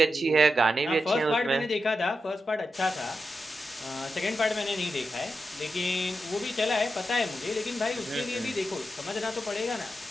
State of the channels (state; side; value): normal; both; correlation 0.88